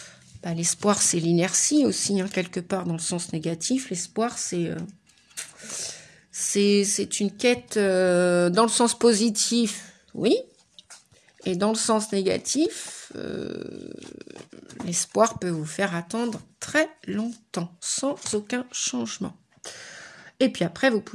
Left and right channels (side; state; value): both; identical; correlation 1.00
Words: l'espoir c'est l'inertie aussi, hein, quelque part dans le sens négatif. L'espoir, c'est une quête dans le sens positif. Oui, et dans le sens négatif, l'espoir peut vous faire attendre très longtemps, sans aucun changement. Et puis après, vous